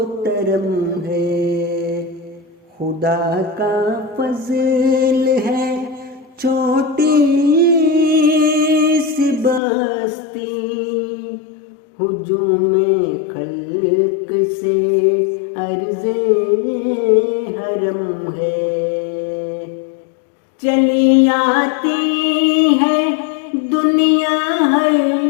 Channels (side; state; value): right; drops out; at 9.6 s